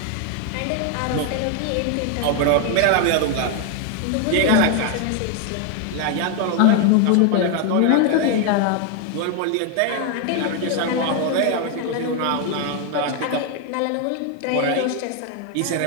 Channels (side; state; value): both; different; correlation 0.01